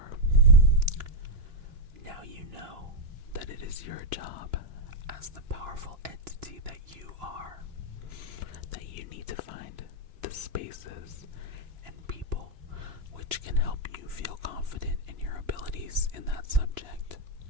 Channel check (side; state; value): left; late; 2.9 ms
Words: Now you know that it is your job as the powerful entity that you are, that you need to find the spaces and people which can help you feel confident in your abilities in that subject.